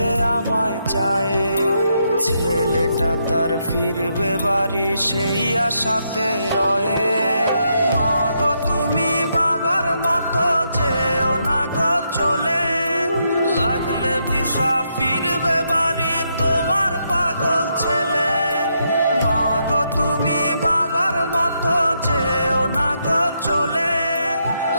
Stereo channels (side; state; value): both; inverted; correlation -0.79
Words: আমায় চায়, ছেলেটা তার ফিরবে বাড়ি সেই আশাতে রয়ে। মা গো তুমি বাবার মতো যেও না গো চলে, লাগলে ভিসা ফিরবে বাড়ি তোমার পাগল ছেলে। মা গো তুমি বাবার মতো যেও না গো চলে,